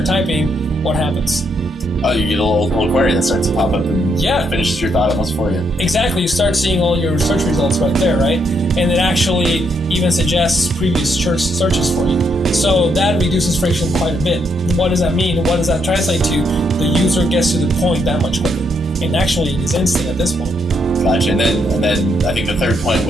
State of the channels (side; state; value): both; normal; correlation 0.76